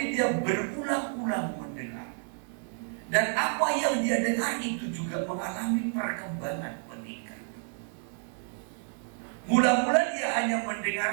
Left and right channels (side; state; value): left; silent; 58 dB below the other